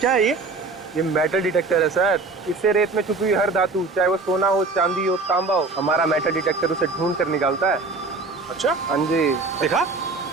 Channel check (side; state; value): left; quieter; 3.8 dB